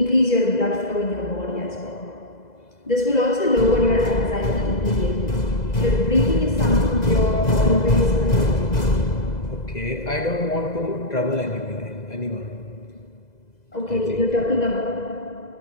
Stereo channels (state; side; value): late; right; 2.0 ms